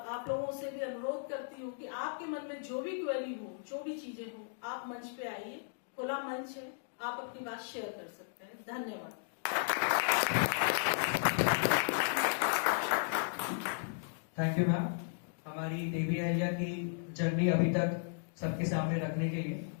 आप लोगों से भी अनुरोध करती हूँ कि आपके मन में जो भी क्वेरी हो, जो भी चीजें हो, आप मंच पे आइए, खुला मंच है, आप अपनी बात शेयर कर सकते हैं। धन्यवाद। थैंक यू मैम, हमारी देवी अहिल्या की जर्नी अभी तक सबके सामने रखने के लिए।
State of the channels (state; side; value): silent; right; digital silence